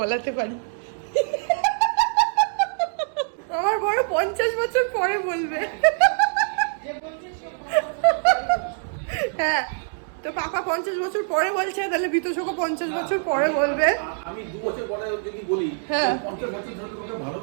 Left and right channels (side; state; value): left; silent; digital silence